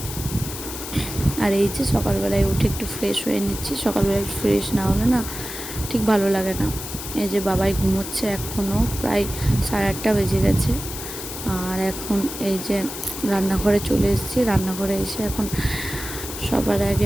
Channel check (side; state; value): left; noise; hiss, 9 dB below the sound